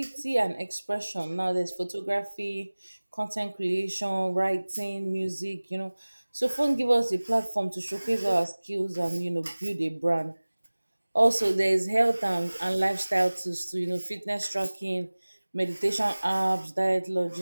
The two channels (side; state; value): both; inverted; correlation -1.00